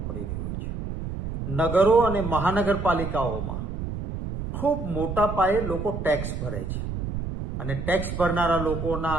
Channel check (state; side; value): noise; right; rumble, 5 dB below the sound